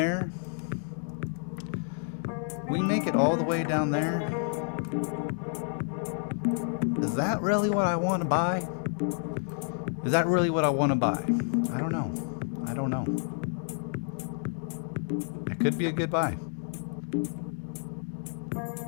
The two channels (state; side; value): silent; right; 58 dB below the other